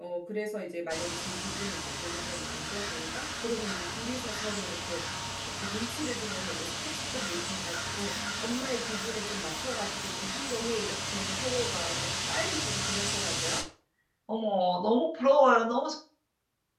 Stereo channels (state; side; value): identical; both; correlation 1.00